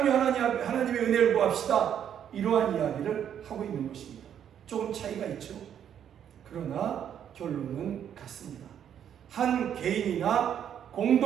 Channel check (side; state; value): left; quieter; 9.3 dB